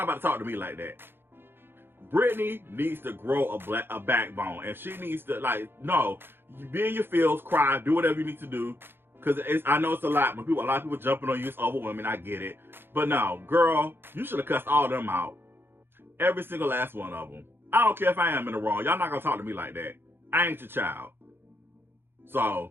about to talk to me like that. Brittany needs to grow a backbone, and she needs to, like, no, you be in your feels, cry, do whatever you need to do. Because I know it's a lot. When a lot of people jumping on you, it's over women. I get it. But no, girl, you should have cussed all of them out. Every single last one of them. I don't care if I am in the wrong. Y'all not gonna talk to me like that. I ain't your child.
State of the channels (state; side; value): late; left; 0.10 ms